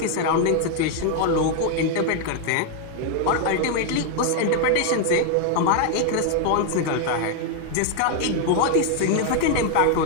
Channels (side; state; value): both; different; correlation 0.00